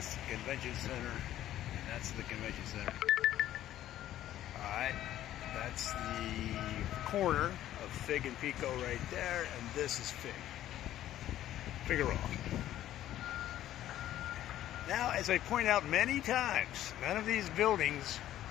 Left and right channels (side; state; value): right; quieter; 12.8 dB